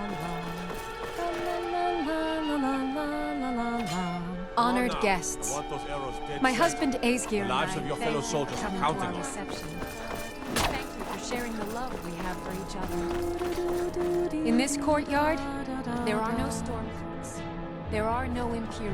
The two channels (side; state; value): both; identical; correlation 1.00